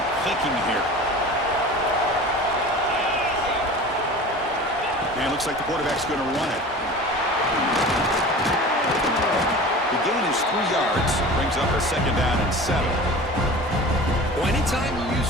clicking here. And it looks like the quarterback's going to run it. The gain is 3 yards. Brings up a 2nd down and 7. Well, anytime you use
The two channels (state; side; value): normal; both; correlation 0.37